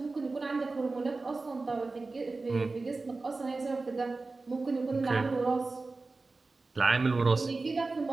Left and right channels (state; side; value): quieter; left; 3.6 dB